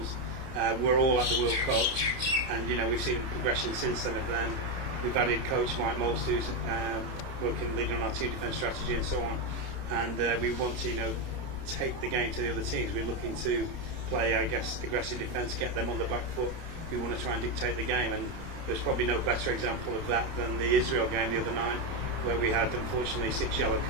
we're all at the World Cup, and we've seen progression since then of them. We've added coach Mike Most, who's leading on our team defence strategy and so on, and we want to take the game to the other teams. We're looking to play, I guess, aggressive defence, get them on the back foot. We want to try and dictate the game, and there's probably no better example of that than the Israel game the other night, where we had unfortunately 6 yellow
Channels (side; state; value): left; late; 30 ms